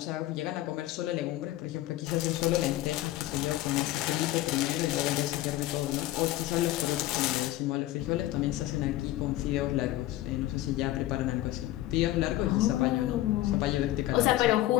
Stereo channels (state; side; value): quieter; right; 15.5 dB